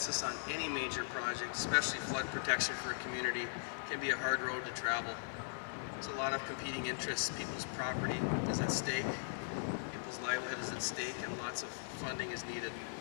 on any major project, especially flood protection for a community, can be a hard road to travel. There's a lot of competing interests. People's property is at stake, people's livelihood is at stake, and lots of funding is needed.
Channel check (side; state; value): right; silent; digital silence